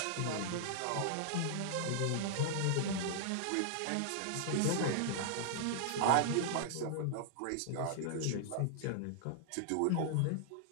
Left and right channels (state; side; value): different; both; correlation -0.01